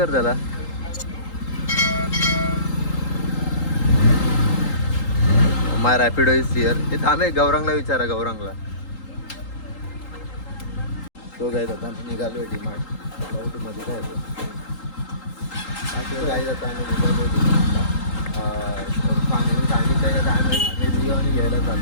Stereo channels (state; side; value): late; right; 3.8 ms